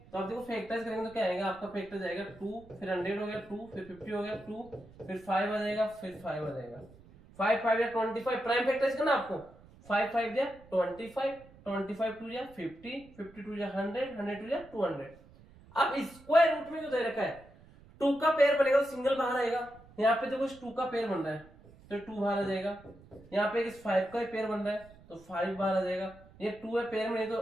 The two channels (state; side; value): noise; right; rumble, 23 dB below the sound